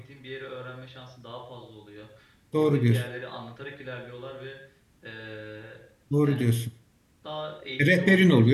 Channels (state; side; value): identical; both; correlation 1.00